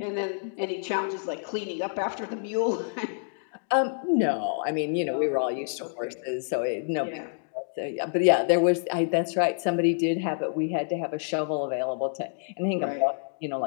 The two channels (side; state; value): right; silent; digital silence